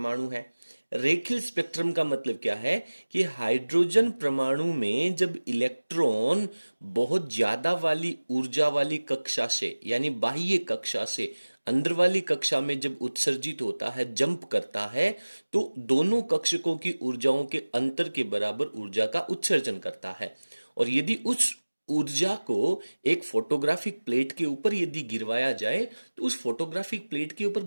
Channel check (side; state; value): both; inverted; correlation -1.00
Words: है। रेखीय स्पेक्ट्रम का मतलब क्या है कि हाइड्रोजन परमाणु में जब इलेक्ट्रॉन बहुत ज्यादा वाली ऊर्जा वाली कक्षा से यानी बाह्य कक्षा से अंदर वाली कक्षा में जब उत्सर्जित होता है, जंप करता है, तो दोनों कक्षकों की ऊर्जाओं के अंतर के बराबर ऊर्जा का उत्सर्जन करता है। और यदि उस ऊर्जा को एक फोटोग्राफिक प्लेट के ऊपर यदि गिरवाया जाए तो उस फोटोग्राफिक प्लेट के ऊपर